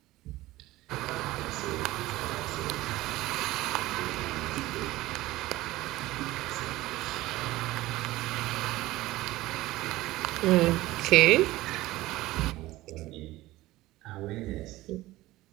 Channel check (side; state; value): left; quieter; 17.6 dB